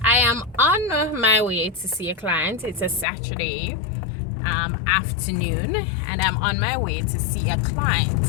am on my way to see a client. It's a Saturday afternoon, and I'm on my way to see a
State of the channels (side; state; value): right; drops out; at 3.1 s